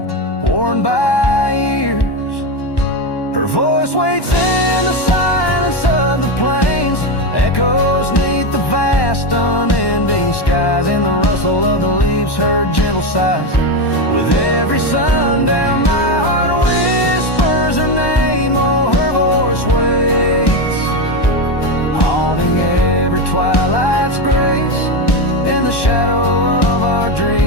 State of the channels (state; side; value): late; right; 1.1 ms